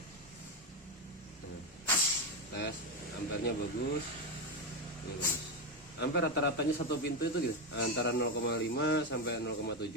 Tes ampernya bagus. Ampere rata-ratanya satu pintu itu gitu, antara 0,5 sampai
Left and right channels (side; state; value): both; normal; correlation 0.10